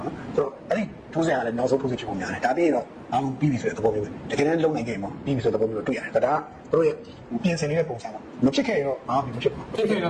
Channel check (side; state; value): both; identical; correlation 1.00